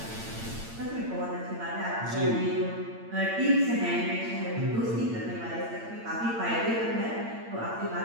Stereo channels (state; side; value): late; left; 8.8 ms